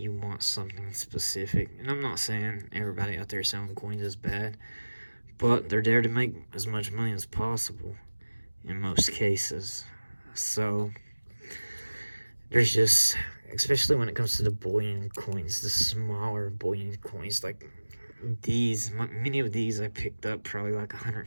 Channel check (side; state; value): both; inverted; correlation -1.00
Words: want something specific. And I'm not saying everybody out there selling coins is bad, but they're there to make as much money as possible in most cases. So there's just, especially when it comes to the bullion coins, the smaller bullion coins, like these, many of these I picked up probably like